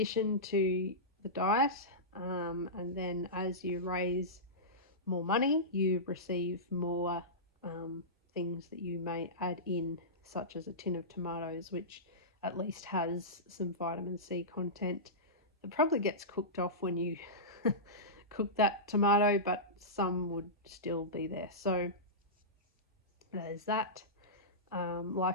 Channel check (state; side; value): normal; both; correlation -0.18